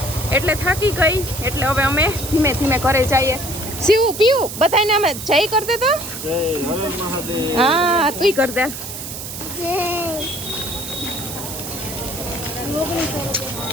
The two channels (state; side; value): noise; right; hiss, 8 dB below the sound